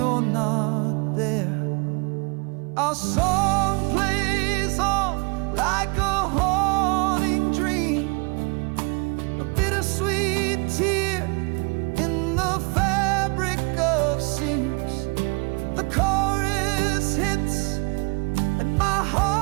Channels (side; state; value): left; quieter; 31.6 dB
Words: not there. Our song plays on like a haunting dream, a bittersweet tear in the fabric of seams. The chorus hits and my